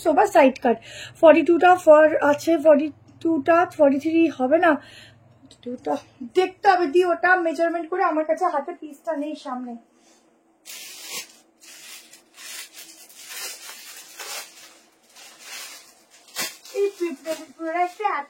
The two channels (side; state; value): both; identical; correlation 1.00